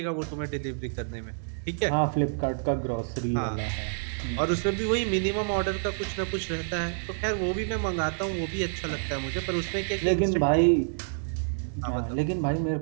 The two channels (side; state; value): left; silent; digital silence